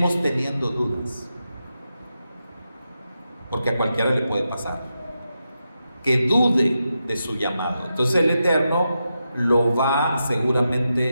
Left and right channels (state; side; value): inverted; both; correlation -0.87